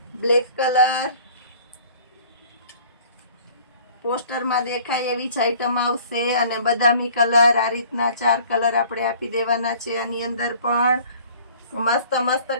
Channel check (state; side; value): inverted; both; correlation -0.51